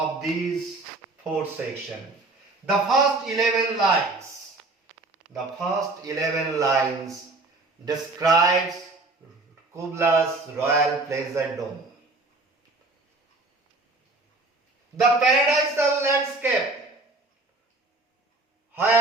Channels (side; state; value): left; quieter; 3.2 dB